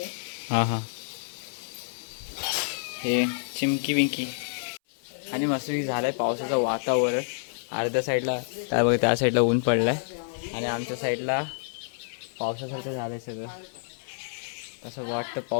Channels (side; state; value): right; silent; 59 dB below the other